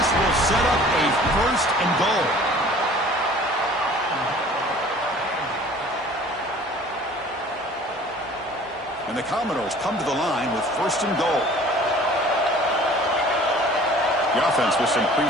will set up a 1st and goal. And the Commodores come to the line with 1st and goal. The offense with some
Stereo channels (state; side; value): normal; both; correlation 0.49